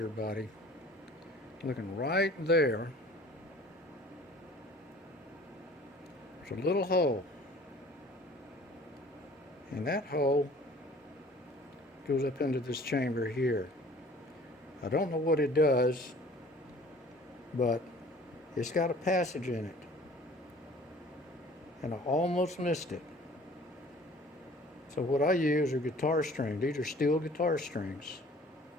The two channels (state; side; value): normal; both; correlation 0.50